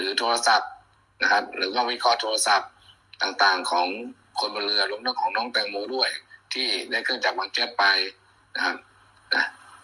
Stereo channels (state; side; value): identical; both; correlation 1.00